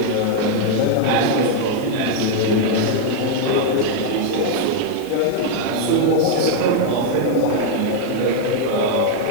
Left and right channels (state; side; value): different; both; correlation 0.00